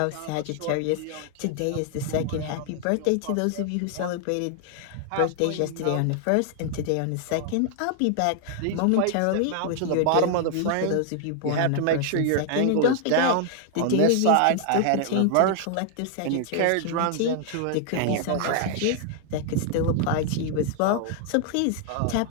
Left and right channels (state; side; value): different; both; correlation 0.00